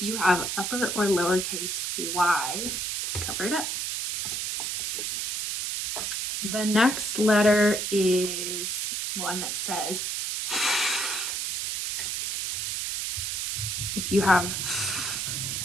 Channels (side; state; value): right; noise; hiss, 2 dB below the sound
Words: you have upper or lowercase y, cover it up. The next letter is one that says if you have